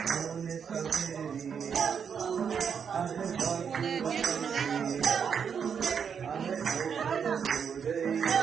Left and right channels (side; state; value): left; quieter; 7.1 dB